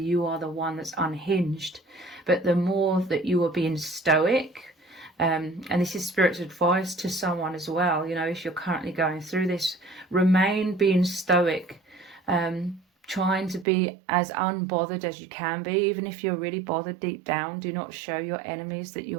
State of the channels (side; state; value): left; drops out; at 13.7 s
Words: are the one that's unhinged. But the more that you were being stoic, and this is spirit's advice to someone as well, if you're currently going through this, remain being stoic, trying to be as unbothered as you can be. Even if you're really bothered deep down, do not show your enemies that